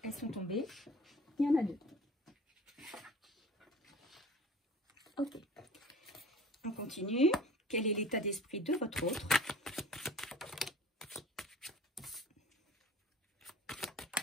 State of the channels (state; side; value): normal; both; correlation 0.44